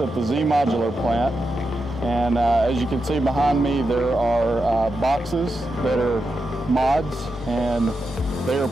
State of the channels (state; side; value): normal; both; correlation 0.87